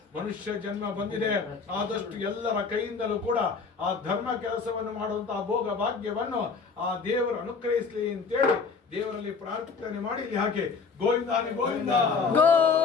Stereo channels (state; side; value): quieter; right; 5.1 dB